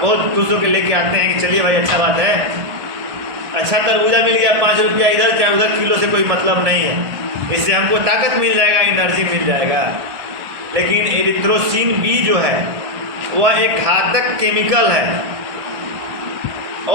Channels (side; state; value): left; late; 1.8 ms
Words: खुश होकर लेके आते हैं कि चलिए भाई अच्छा बात है, अच्छा तरबूजा मिल गया, 5 रुपया इधर चाहे उधर, किलो से कोई मतलब नहीं है, इससे हमको ताकत मिल जाएगा, एनर्जी मिल जाएगा। लेकिन एरिथ्रोसिन बी जो है वह एक घातक केमिकल है